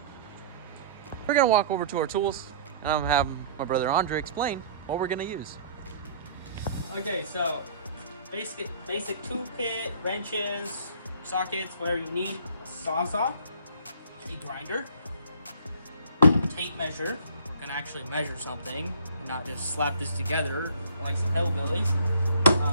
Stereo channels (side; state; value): both; inverted; correlation -0.51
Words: We're gonna walk over to our tools, and I'm gonna have my brother Andre explain what we're gonna use. Okay, so basic tool kit, wrenches, sockets, where you need a sawzall, a grinder, tape measure. We're gonna actually measure something and not just slap this together like some hillbillies.